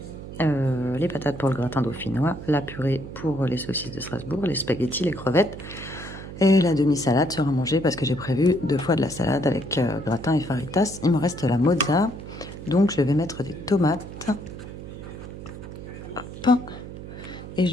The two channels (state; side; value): noise; right; hum, 12 dB below the sound